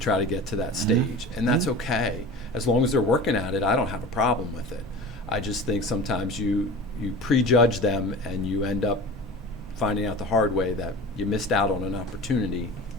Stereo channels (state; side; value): normal; both; correlation 0.36